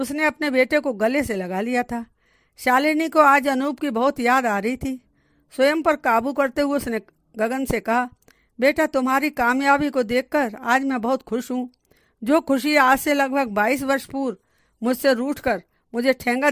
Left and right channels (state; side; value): identical; both; correlation 1.00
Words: अपने बेटे को गले से लगा लिया था। शालिनी को आज अनूप की बहुत याद आ रही थी। स्वयं पर काबू करते हुए उसने गगन से कहा, बेटा, तुम्हारी कामयाबी को देखकर आज मैं बहुत खुश हूँ। जो खुशी आज से लगभग 22 वर्ष पूर्व मुझसे रूठकर मुझे ठेंगा